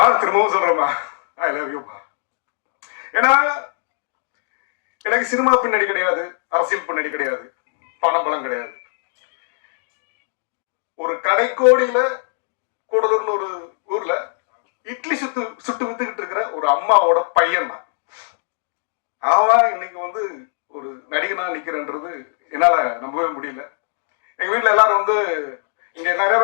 திரும்பவும் சொல்றேம்மா, ஐ லவ் யூப்பா. ஏன்னா எனக்கு சினிமா பின்னாடி கிடையாது, அரசியல் பின்னாடி கிடையாது, பணம் கிடையாது. ஒரு கடைக்கோடியில கூடலூர்னு ஒரு ஊர்ல இட்லி சுட்டு வித்துக்கிட்டு இருக்கிற ஒரு அம்மாவோட பையன் தான். அவன் இன்னைக்கு வந்து ஒரு நடிகனா நிக்கிறன்றது என்னால நம்பவே முடியல. எங்க வீட்டுல எல்லாரும் வந்து இங்க நிறைய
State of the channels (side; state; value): right; silent; digital silence